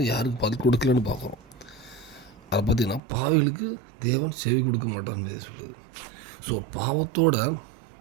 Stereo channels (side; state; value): left; drops out; at 3.0 s